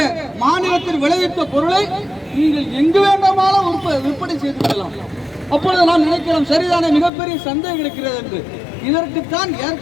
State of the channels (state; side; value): drops out; right; at 7.1 s